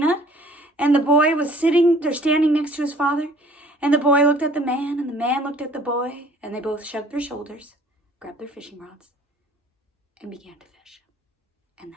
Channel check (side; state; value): both; normal; correlation 0.54